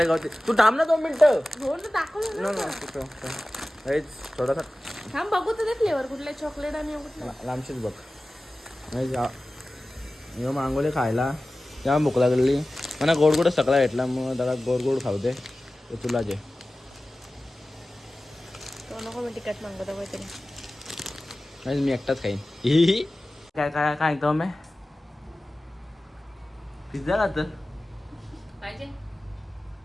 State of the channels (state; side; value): normal; both; correlation 0.96